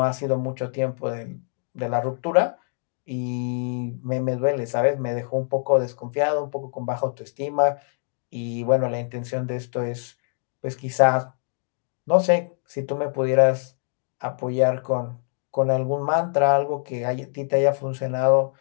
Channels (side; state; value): right; silent; 56 dB below the other